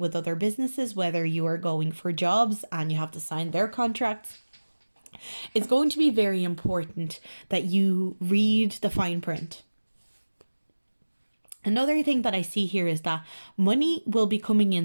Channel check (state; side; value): inverted; both; correlation -1.00